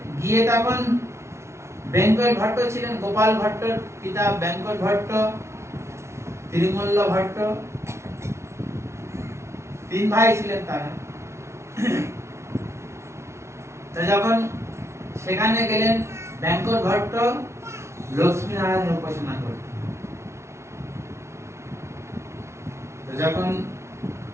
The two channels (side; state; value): left; late; 0.13 ms